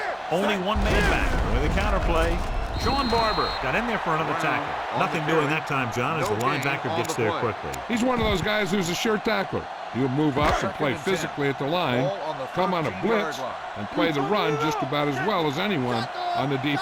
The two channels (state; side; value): identical; both; correlation 1.00